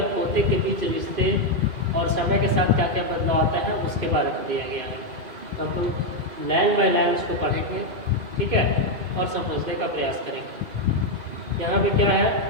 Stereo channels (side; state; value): left; late; 2.5 ms